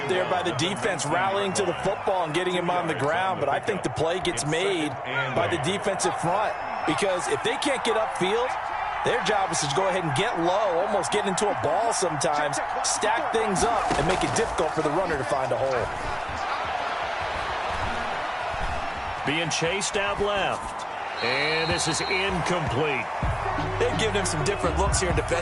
there by the defense rallying to the football and getting him on the ground, but I think the play gets made by the defensive front because if they can't get upfield, their job is to go ahead and get low, almost get into a ball sometimes, stack things up, and make it difficult for the runner to find a hole. Being chased out left. And this is incomplete. They've given him some different looks here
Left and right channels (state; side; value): identical; both; correlation 1.00